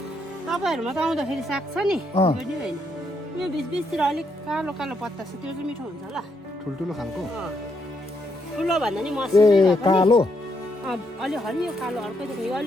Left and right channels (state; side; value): normal; both; correlation 0.77